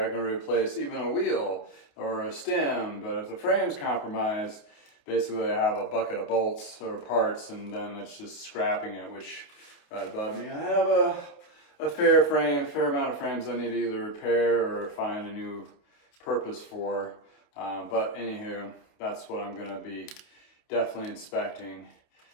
can replace even a wheel or a stem, but if the frame's compromised, basically I have a bucket of bolts or parts, and then it's just scrapping it, which right above me I have a fair amount of frames I need to either repair or find a new purpose for. But anywho, that's what I'm gonna be definitely inspecting.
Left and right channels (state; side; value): late; right; 28 ms